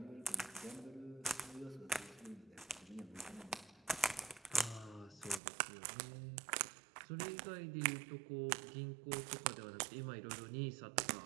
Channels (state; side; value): drops out; left; at 5.4 s